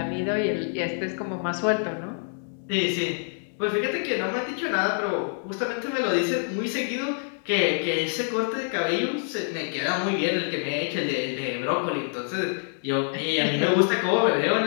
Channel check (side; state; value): right; silent; 61 dB below the other